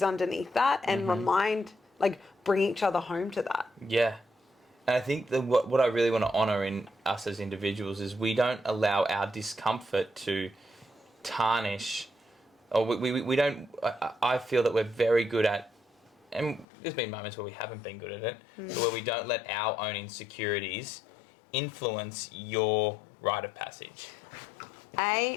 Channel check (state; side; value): drops out; right; at 16.7 s